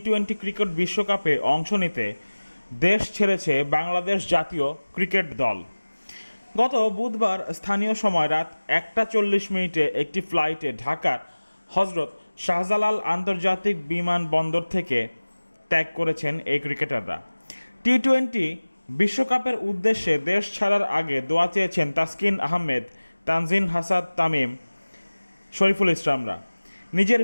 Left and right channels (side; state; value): both; inverted; correlation -1.00